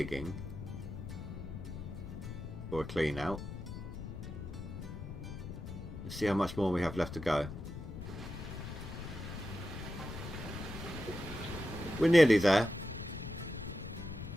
for a clean out. Let's see how much more we have left to go. We're nearly there.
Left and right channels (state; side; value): noise; left; rumble, 9 dB below the sound